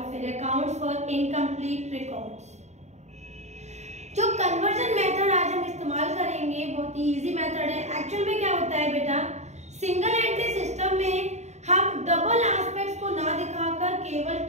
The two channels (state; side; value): late; left; 0.33 ms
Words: फिर अकाउंट्स फॉर इनकम्प्लीट रिकॉर्ड्स। जो कन्वर्जन मेथड आज हम इस्तेमाल करेंगे बहुत ही इजी मेथड है। एक्चुअल में क्या होता है बेटा, सिंगल एंट्री सिस्टम में हम डबल एस्पेक्ट्स को ना दिखाकर केवल